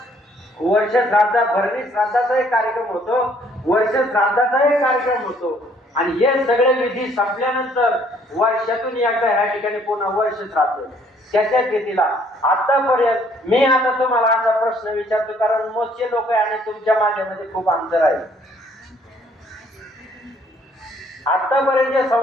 वर्ष श्राद्धा, भरणी श्राद्धाचाही कार्यक्रम होतो, वर्ष श्राद्धाचाही कार्यक्रम होतो. आणि हे सगळे विधी संपल्यानंतर वर्षातून एकदा ह्या ठिकाणी पुन्हा वर्ष श्राद्ध. त्याच्या तिथीला आतापर्यंत मी आता तुम्हाला असा प्रश्न विचारतो, कारण मोजके लोक आहे आणि तुमच्या माझ्यामध्ये खूप अंतर आहे. आतापर्यंत जे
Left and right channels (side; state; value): both; normal; correlation 0.63